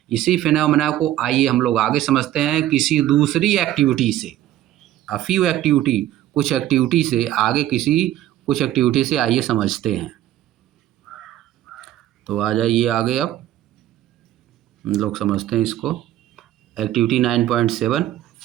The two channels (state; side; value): quieter; left; 13.3 dB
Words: इसी फेनोमेना को आइए हम लोग आगे समझते हैं किसी दूसरी एक्टिविटी से। अ फ्यू एक्टिविटी, कुछ एक्टिविटी से आगे, कुछ एक्टिविटी से आइए समझते हैं। तो आ जाइए आगे, अब हम लोग समझते हैं इसको। Activity 9.7,